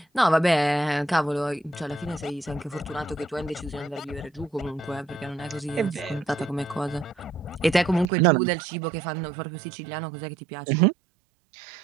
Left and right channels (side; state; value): left; drops out; at 8.1 s